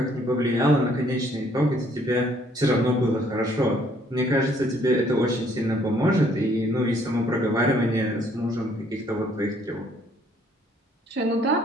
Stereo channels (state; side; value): normal; both; correlation 0.64